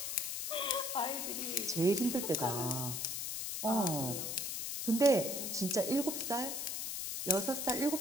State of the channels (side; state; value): left; noise; hiss, 3 dB below the sound